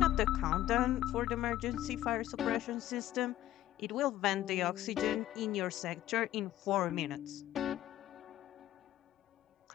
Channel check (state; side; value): quieter; right; 13.7 dB